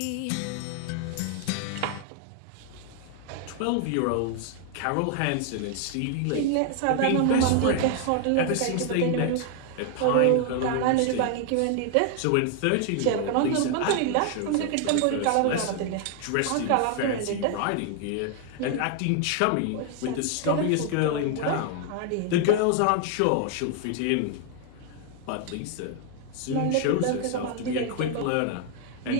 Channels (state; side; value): different; both; correlation 0.00